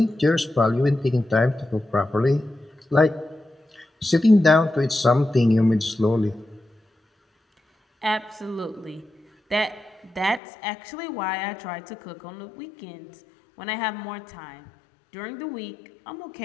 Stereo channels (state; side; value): drops out; right; at 10.4 s